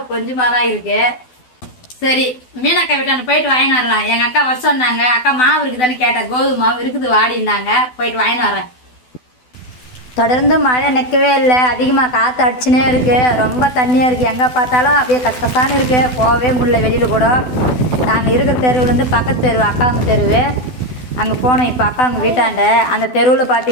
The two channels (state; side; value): late; right; 12 ms